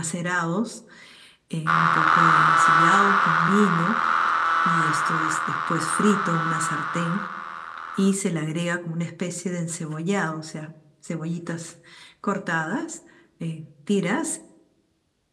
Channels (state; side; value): identical; both; correlation 1.00